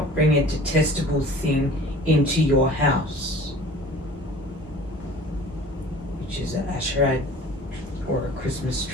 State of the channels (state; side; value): normal; both; correlation 0.45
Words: bring a detestable thing into your house, which is an Asherah or a Christmas